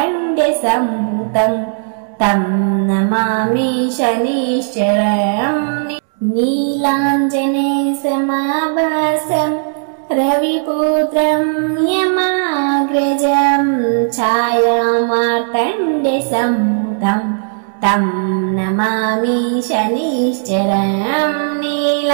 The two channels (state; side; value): silent; left; digital silence